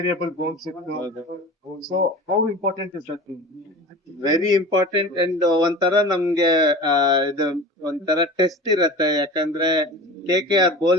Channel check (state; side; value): normal; both; correlation 0.35